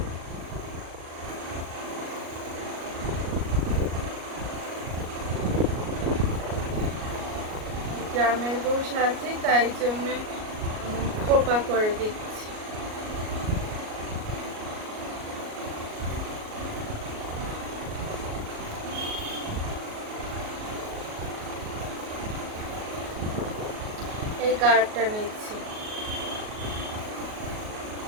গ্রামের বউ সাজে, তাই জন্য খোপা করে দিচ্ছি। এই কার্ডটা নিচ্ছি।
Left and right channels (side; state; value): left; late; 38 ms